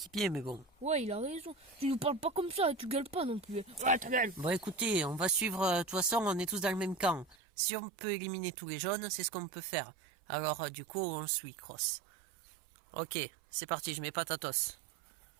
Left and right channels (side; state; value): left; drops out; at 7.4 s